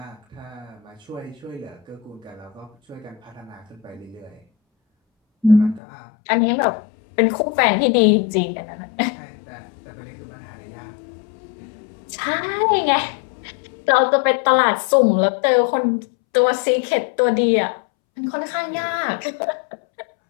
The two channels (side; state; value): right; drops out; at 5.8 s